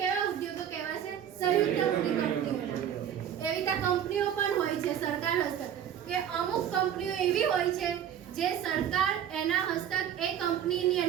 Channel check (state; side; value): quieter; left; 9.6 dB